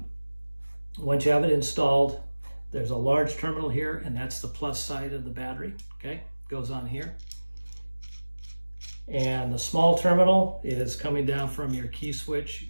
Once you have it installed, there's a large terminal here, and that's the plus side of the battery, okay? Goes on here. And the small terminal is coming down from your key switch,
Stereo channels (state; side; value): inverted; both; correlation -1.00